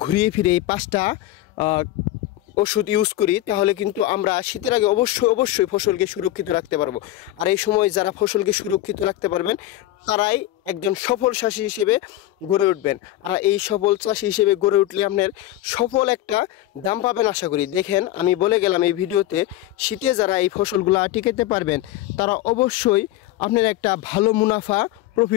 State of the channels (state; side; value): quieter; right; 14.9 dB